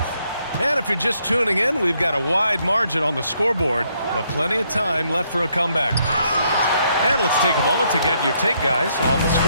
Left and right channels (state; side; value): inverted; both; correlation -0.73